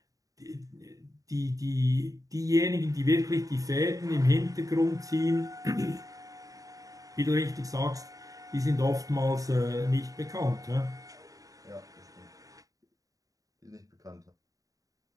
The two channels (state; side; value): late; left; 0.17 ms